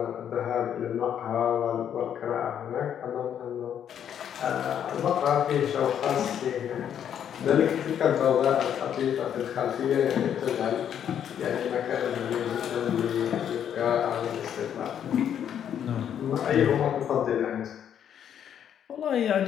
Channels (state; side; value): quieter; right; 9.2 dB